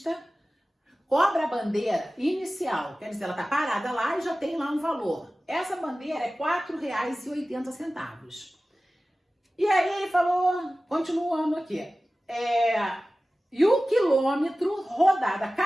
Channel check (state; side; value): normal; both; correlation 0.96